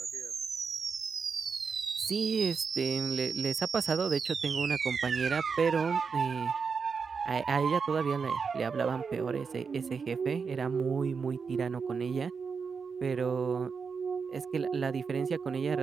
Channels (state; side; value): quieter; left; 5.6 dB